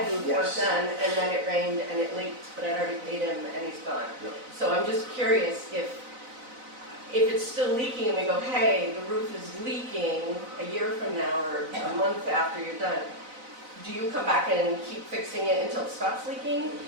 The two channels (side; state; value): left; late; 4.0 ms